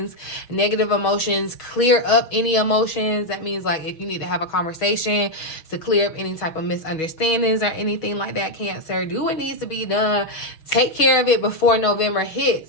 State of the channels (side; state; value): right; late; 6.3 ms